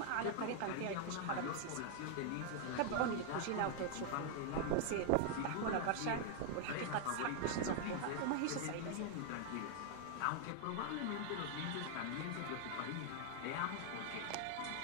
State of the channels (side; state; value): both; different; correlation 0.00